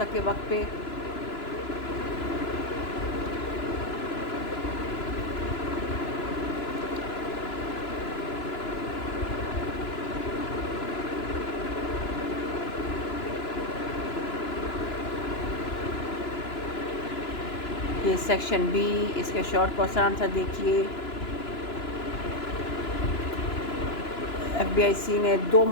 वक्त पे। ये सेक्शन B, इसके शॉर्ट क्वेश्चन आंसर देखिए। FBIC ने 2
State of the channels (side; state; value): right; late; 2.9 ms